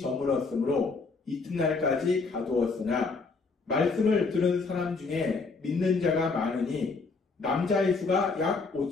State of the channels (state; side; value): quieter; right; 4.2 dB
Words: 이튿날까지 가두었으나 말씀을 들은 사람 중에 믿는 자가 많으니 남자의 수가 약